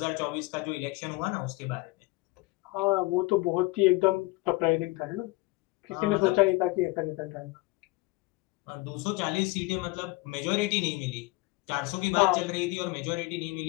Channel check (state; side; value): quieter; right; 22.2 dB